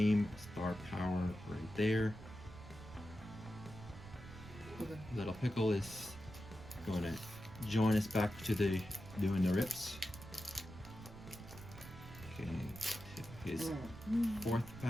Star power right there. Okay. Little Pickle is going to join us back to the doing the rips. Okay, his fourth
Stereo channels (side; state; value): right; noise; rumble, 14 dB below the sound